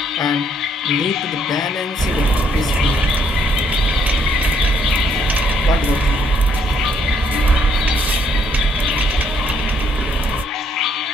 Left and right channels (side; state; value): both; normal; correlation 0.70